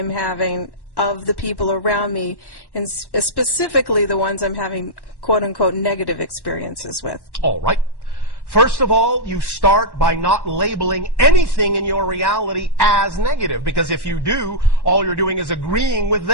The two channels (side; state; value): right; late; 1.1 ms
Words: having of the people around me, and specifically the ones I'm having quote-unquote negative experiences with? All right. First of all, you start by not labeling anything in your reality as negative, because if you do, all you're doing is agreeing with